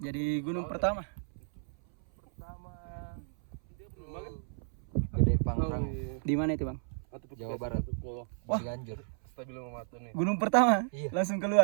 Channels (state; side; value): silent; left; 56 dB below the other